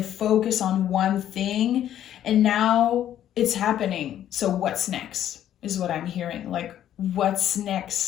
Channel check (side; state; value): right; quieter; 11.1 dB